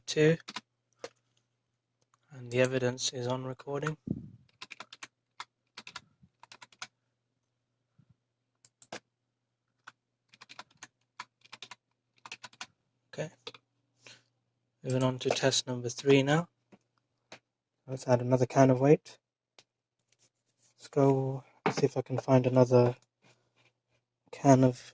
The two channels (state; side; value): identical; both; correlation 1.00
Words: 2, and the evidence is on recording. Okay, moving on to test number 3 now. Let's add another can of weight. Let's see if I can find another can of